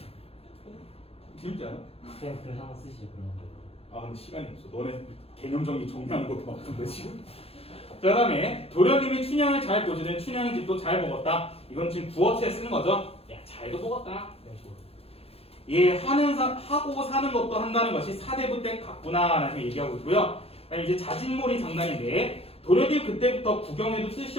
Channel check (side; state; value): right; late; 0.29 ms